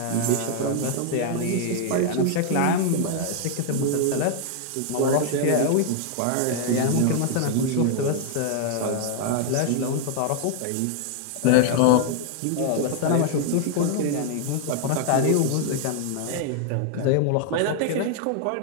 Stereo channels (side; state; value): both; different; correlation 0.00